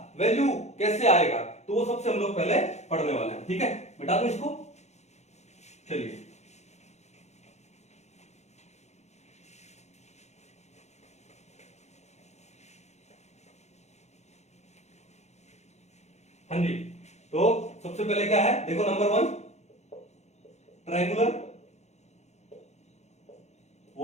वैल्यू कैसे आएगा, तो वो सबसे हम लोग पहले पढ़ने वाले हैं। ठीक है, बता दो इसको, चलिए। हाँ जी, तो सबसे पहले क्या है, देखो नंबर 1 ट्रायंगुलर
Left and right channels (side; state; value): right; late; 0.33 ms